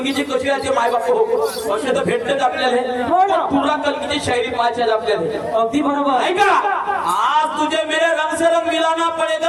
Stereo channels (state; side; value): identical; both; correlation 1.00